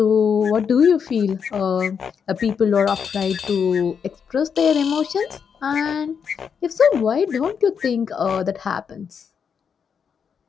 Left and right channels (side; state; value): right; quieter; 6.8 dB